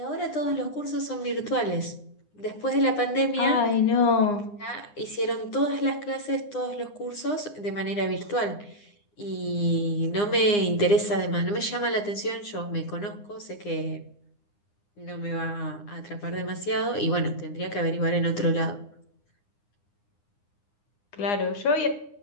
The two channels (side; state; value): right; late; 9.8 ms